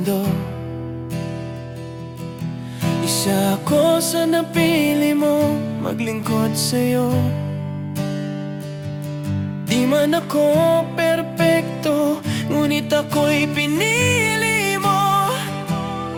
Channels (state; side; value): identical; both; correlation 1.00